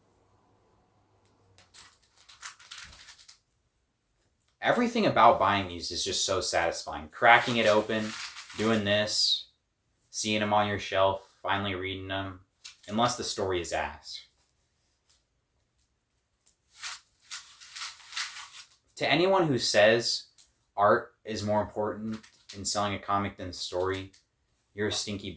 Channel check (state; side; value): identical; both; correlation 1.00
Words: Everything about buying these is just so satisfying. Cracking it open, doing this, seeing them on your shelf, finally reading them, unless the story is ass. To anyone who says art is more important in selling a comic than the story, you're a stinky